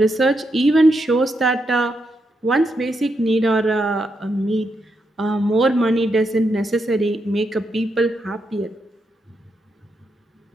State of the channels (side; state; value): both; normal; correlation 0.82